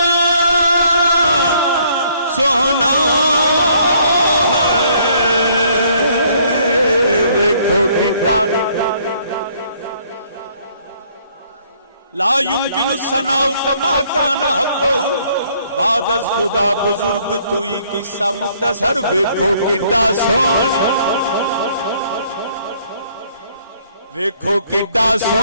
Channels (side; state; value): both; inverted; correlation -0.64